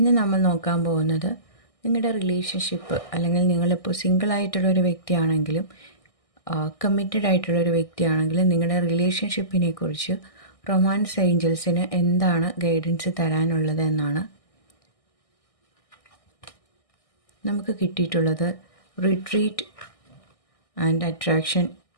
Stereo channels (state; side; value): late; right; 1.6 ms